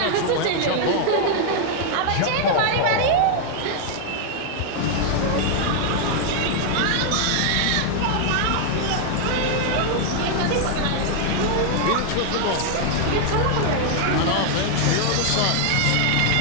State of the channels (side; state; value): both; different; correlation 0.00